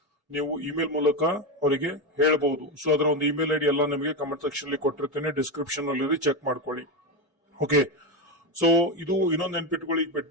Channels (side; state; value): both; normal; correlation 0.12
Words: ನೀವು ಇಮೇಲ್ ಮೂಲಕ ಅವರಿಗೆ ಹೇಳಬಹುದು. ಸೊ ಅದರ ಒಂದು ಇಮೇಲ್ ಐಡಿ ಎಲ್ಲ ನಿಮಗೆ ಕಮೆಂಟ್ ಸೆಕ್ಷನ್ ಅಲ್ಲಿ ಕೊಟ್ಟಿರ್ತೇನೆ, ಡಿಸ್ಕ್ರಿಪ್ಷನ್ ಅಲ್ಲಿ ಚೆಕ್ ಮಾಡ್ಕೊಳ್ಳಿ. ಓಕೆ, ಸೊ ಇದು ಇನ್ನೊಂದು ನೆನ್ಪಿಟ್ಕೊಳ್ಳಿ,